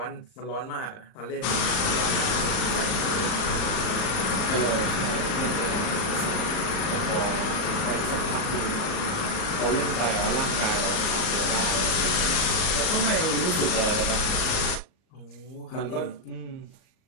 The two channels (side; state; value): right; late; 38 ms